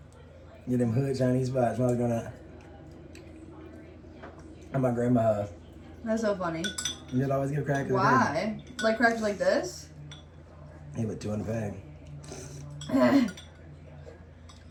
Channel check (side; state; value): both; identical; correlation 1.00